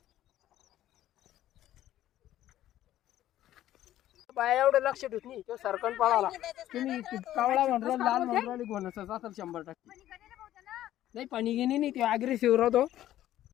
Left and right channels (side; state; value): right; quieter; 13.1 dB